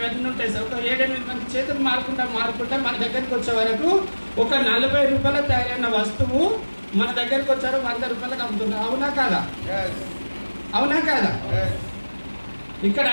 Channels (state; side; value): inverted; both; correlation -1.00